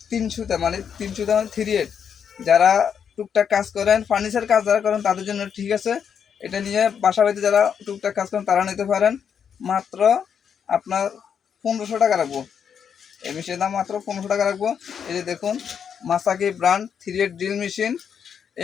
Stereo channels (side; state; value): right; quieter; 7.6 dB